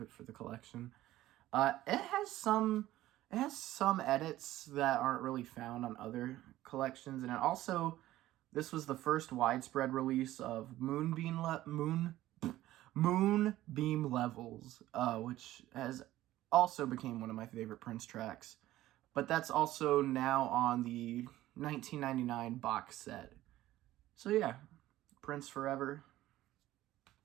it for the collection. It has some edits that aren't really found on other collections, and it also, this was the first widespread release of Moonbeam Levels, which has also became one of my favorite Prince tracks. But that's also now on the 1999 box set. So yeah, Prince Forever.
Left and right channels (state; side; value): quieter; left; 15.2 dB